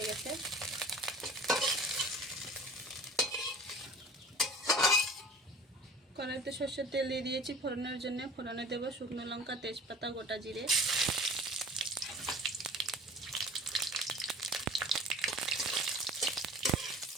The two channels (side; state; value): both; normal; correlation 0.44